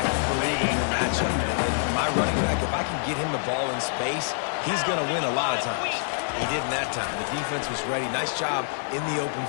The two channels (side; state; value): right; silent; digital silence